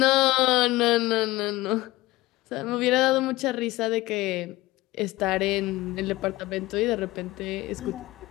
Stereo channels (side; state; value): right; quieter; 18.8 dB